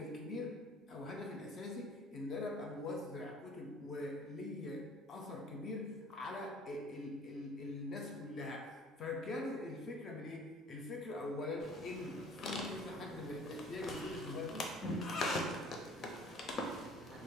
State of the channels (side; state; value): both; normal; correlation 0.51